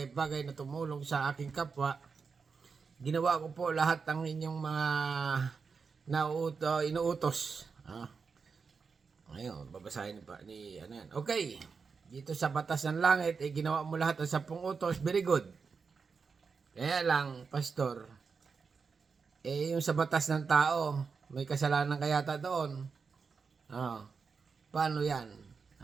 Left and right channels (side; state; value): left; quieter; 5.3 dB